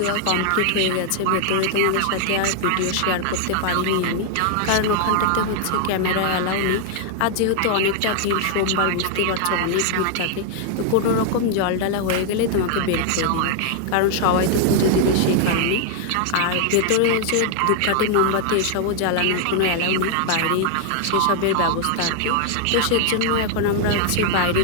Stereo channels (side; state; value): both; different; correlation 0.00